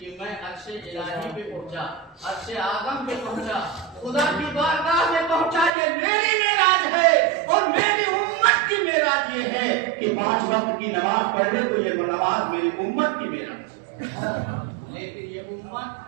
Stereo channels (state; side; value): drops out; left; at 5.7 s